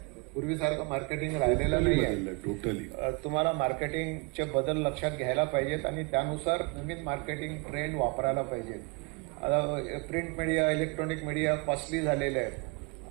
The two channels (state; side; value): quieter; left; 30.2 dB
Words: पूर्वीसारखं मार्केटिंग राहिलेलं नाही आहे. टोटली तुम्हाला मार्केटिंगचे बदल लक्षात घ्यायला पाहिजेत आणि त्यानुसार नवीन मार्केटिंग ट्रेंड वापरायला पाहिजेत. आता print media, electronic media costly झालेले आहेत.